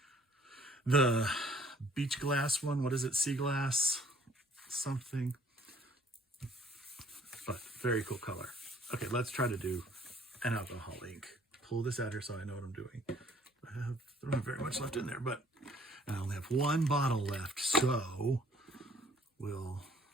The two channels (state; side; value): normal; both; correlation 0.58